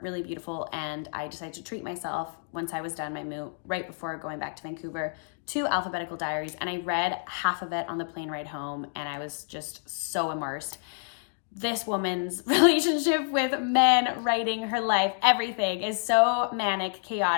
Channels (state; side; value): silent; right; digital silence